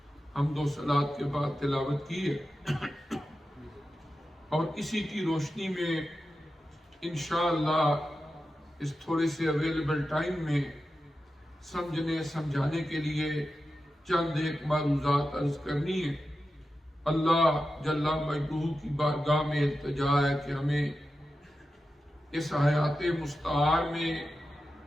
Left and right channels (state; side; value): normal; both; correlation 0.91